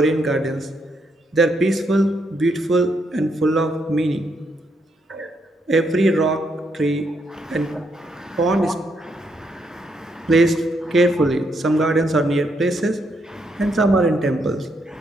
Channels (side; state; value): both; normal; correlation 0.77